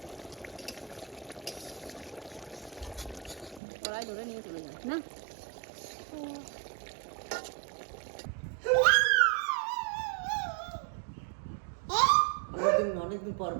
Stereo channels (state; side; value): drops out; left; at 3.6 s